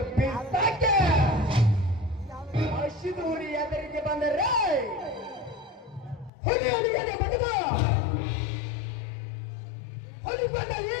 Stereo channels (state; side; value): drops out; right; at 6.3 s